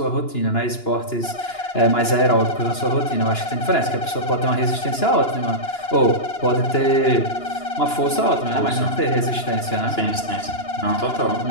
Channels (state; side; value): late; right; 2.9 ms